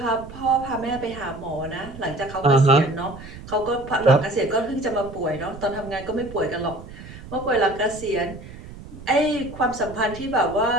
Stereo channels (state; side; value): noise; right; rumble, 15 dB below the sound